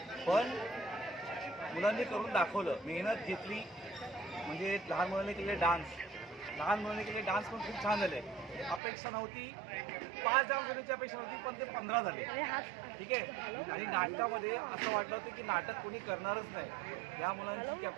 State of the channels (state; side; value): drops out; left; at 8.8 s